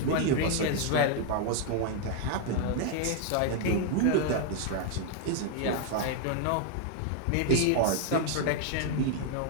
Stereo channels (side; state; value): both; different; correlation 0.00